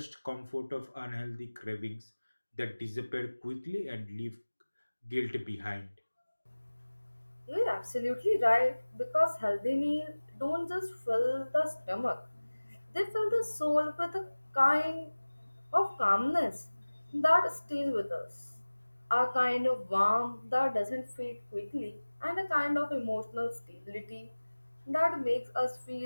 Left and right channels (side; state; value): both; inverted; correlation -1.00